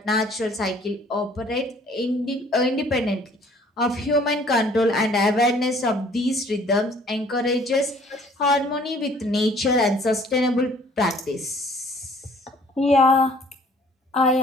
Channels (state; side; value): normal; both; correlation 0.56